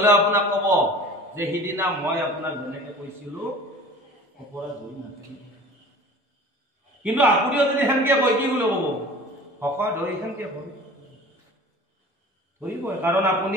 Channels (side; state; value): both; normal; correlation 0.42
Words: আপোনাক কব যে সিদিনা মই আপোনাক যেনেকে কৈছিলো অপৰাধ হৈ নাথাকিব। কিন্তু আপুনিও যদি সেনেকে কয় কি বুলি কব? শকত হৈ সেনেকে ধৰিবই, কাৰণ